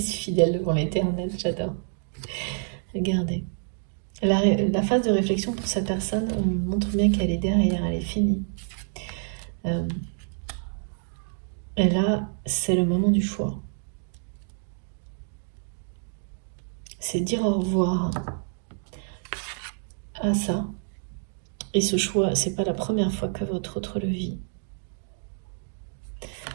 fidèle devant l'éternel, j'adore. Regardez. La phase de réflexion pour cette personne, on montre bien qu'elle est derrière, elle est finie. Et là, c'est le moment du choix. C'est dire au revoir à ça. Et ce choix, c'est pas la première fois que votre autre le vit.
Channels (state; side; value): silent; left; 60 dB below the other